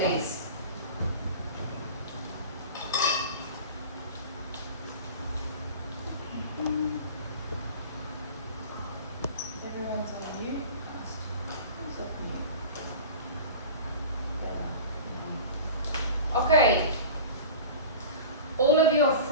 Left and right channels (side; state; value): both; inverted; correlation -0.36